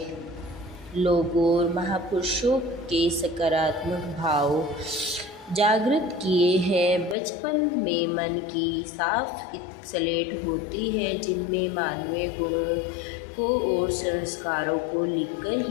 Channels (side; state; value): right; drops out; at 7.2 s